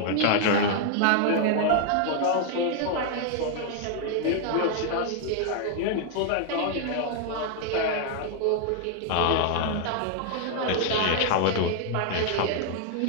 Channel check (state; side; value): different; both; correlation 0.00